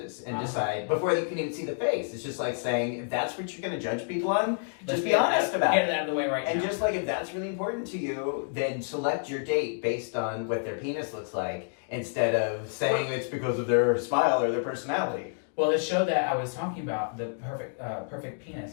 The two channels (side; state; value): right; silent; digital silence